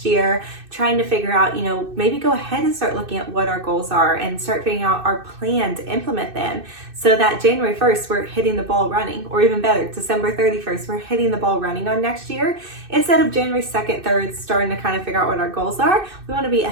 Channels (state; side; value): late; left; 2.6 ms